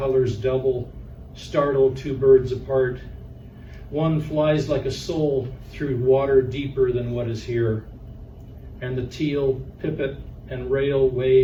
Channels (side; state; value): both; identical; correlation 1.00